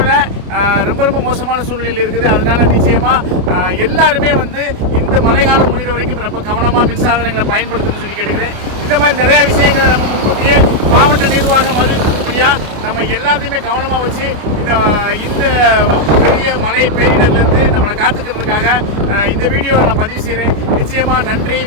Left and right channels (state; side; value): late; left; 29 ms